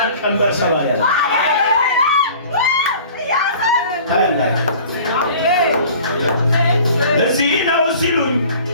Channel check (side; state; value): both; inverted; correlation -0.46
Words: ቀንበር ሰባሪ ያለ ታያላችሁ። እዚህ ነው ሲሉኝ